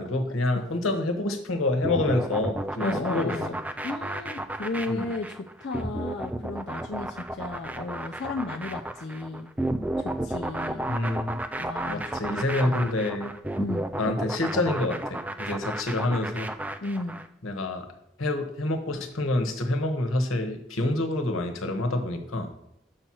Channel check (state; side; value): normal; both; correlation 0.59